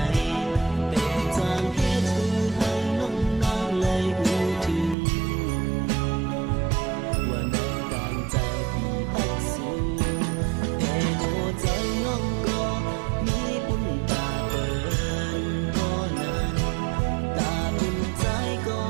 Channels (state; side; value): drops out; left; at 5.0 s